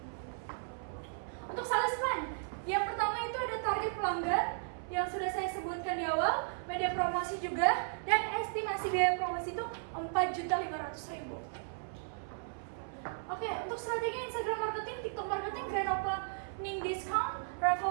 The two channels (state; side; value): silent; left; 54 dB below the other